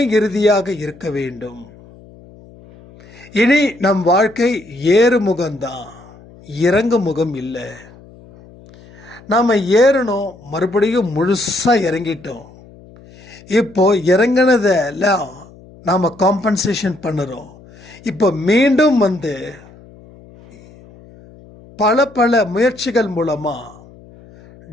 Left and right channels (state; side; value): noise; left; hum, 23 dB below the sound